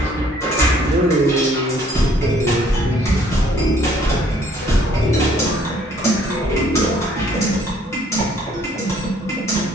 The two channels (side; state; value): both; normal; correlation 0.61